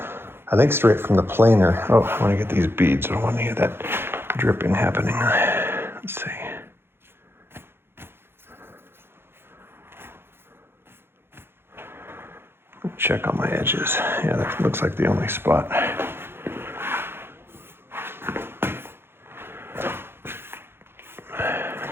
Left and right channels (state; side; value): late; left; 0.11 ms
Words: I think, straight from the planer. Oh, I want to get these beads. I don't want to get that dripping happening. Let's see. Check on my edges. Yeah, that looks like the only spot.